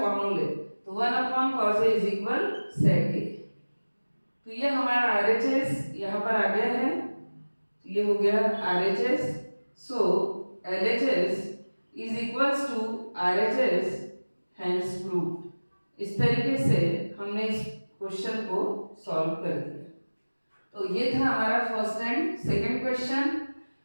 तो 1 upon cos a is equal sec a. तो ये हमारा आरएचएस यहाँ पर आ गया है, तो ये हो गया RHS. So LHS is equals to RHS, hence proved. इस तरीके से हमने इस क्वेश्चन को सॉल्व कर दिया। तो ये था हमारा फर्स्ट एंड सेकंड क्वेश्चन,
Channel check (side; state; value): both; inverted; correlation -1.00